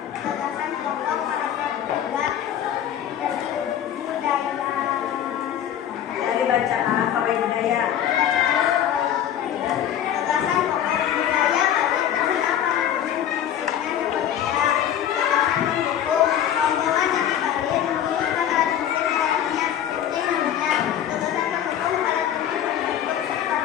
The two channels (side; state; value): right; quieter; 10.2 dB